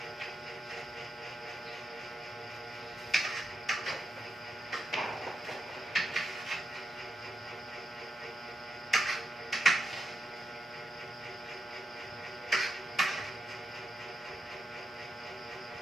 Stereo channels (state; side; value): normal; both; correlation 0.85